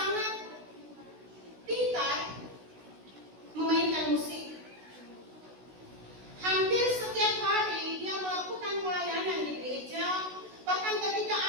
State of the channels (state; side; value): late; left; 16 ms